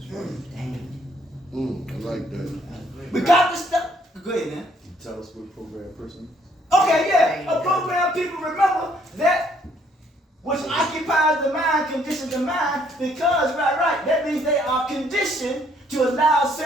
I like that. We got to stop. Go ahead, man. You tell us what a programmed person. Okay, yeah. A programmed people, remember that which occupies the mind, conditions the mind, because, right, that means they are conditioned to allow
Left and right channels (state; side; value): normal; both; correlation 0.66